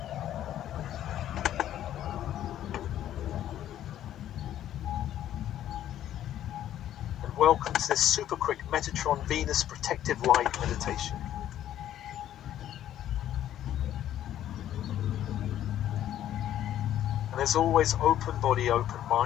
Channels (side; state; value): right; quieter; 11.7 dB